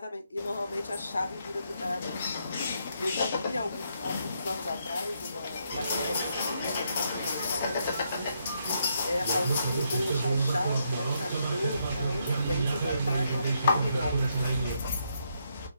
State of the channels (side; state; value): both; inverted; correlation -0.77